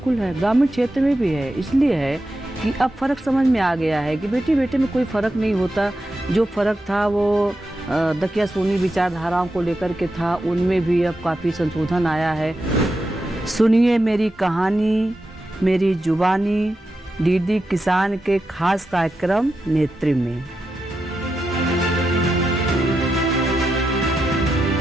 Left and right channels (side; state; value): both; normal; correlation 0.88